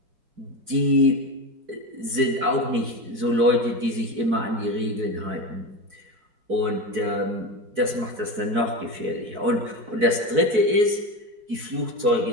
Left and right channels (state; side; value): late; left; 4.6 ms